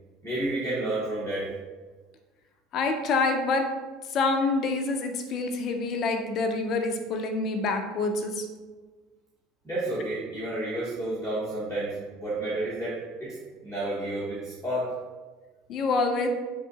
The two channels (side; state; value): both; normal; correlation 0.47